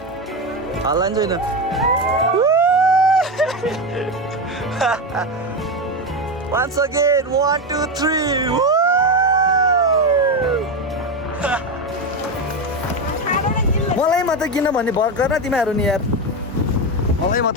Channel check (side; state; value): both; normal; correlation 0.14